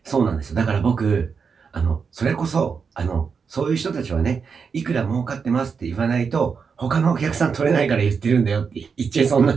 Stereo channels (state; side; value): quieter; left; 5.8 dB